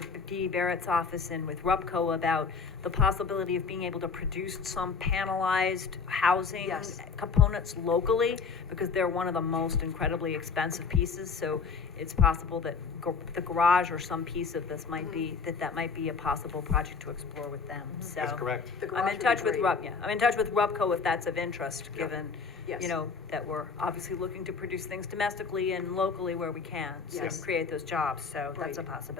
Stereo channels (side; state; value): right; quieter; 5.2 dB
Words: Dee Barrett's office and with RUPCO about the possibility of being able to produce some panelized housing Yes. components locally, because they're one of the most incredibly expensive pieces, so it's possible that the garage or some piece of this might be, that might be a possible project to explore with them, so. That's correct. The garage I'm in would be touch with great. I'm in touch with RUPCO if that's of interest, Yeah. given, Yes. that we're obviously looking to produce things domestically and locally where we can, so Yes. create those jobs, so that's a Right.